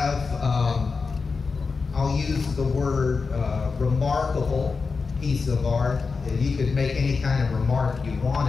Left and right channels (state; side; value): quieter; right; 4.7 dB